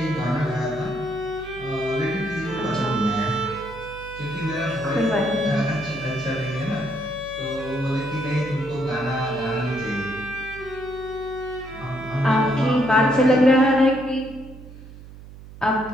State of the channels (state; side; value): noise; right; hum, 16 dB below the sound